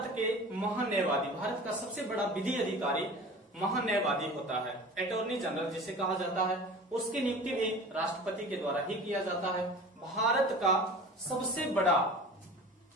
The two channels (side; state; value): both; normal; correlation 0.39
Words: के महान्यायवादी, भारत का सबसे बड़ा विधि अधिकारी महान्यायवादी होता है, अटॉर्नी जनरल जिसे कहा जाता है, उसकी नियुक्ति भी राष्ट्रपति के द्वारा ही किया जाता है। भारत का सबसे